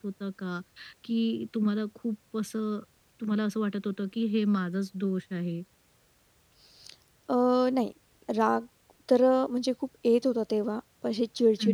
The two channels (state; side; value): identical; both; correlation 1.00